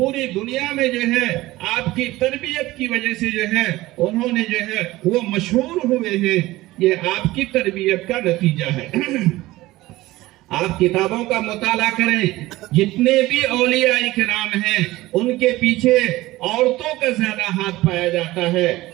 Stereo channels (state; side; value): quieter; left; 18.1 dB